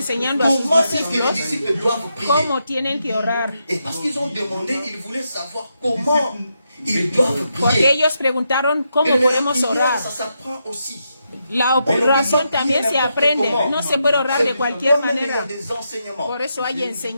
a sus comment est-ce que les discípulos disciples doivent prier. cómo tienen que orar. Et parce qu'ils ont demandé, ils voulaient savoir comment ils doivent Porque prier. ellos preguntaron cómo Et la podemos prière, orar. ça s'apprend aussi. La oración también se aprende. No se puede orar de cualquier Il y a manera. des enseignements. Por eso hay Que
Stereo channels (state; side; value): inverted; both; correlation -0.83